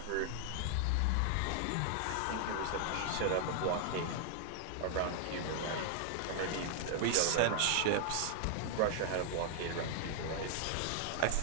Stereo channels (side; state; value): both; different; correlation 0.00